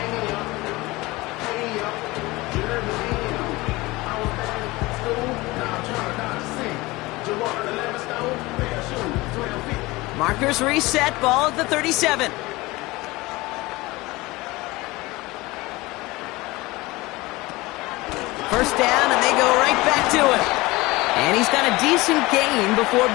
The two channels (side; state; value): right; quieter; 21.2 dB